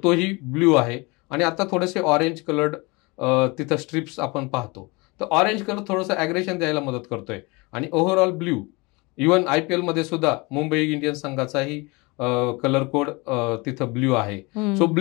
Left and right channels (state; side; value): quieter; right; 26.2 dB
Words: तोही ब्ल्यू आहे आणि आता थोडेसे ऑरेंज कलर्ड तिथं स्ट्रिप्स आपण पाहतो. तर ऑरेंज कलर थोडंसं ॲग्रेशन द्यायला मदत करतोय आणि ओव्हरऑल ब्ल्यू. इव्हन IPL मध्ये सुद्धा मुंबई इंडियन्स संघाचाही कलर कोड तिथं ब्ल्यू आहे. सो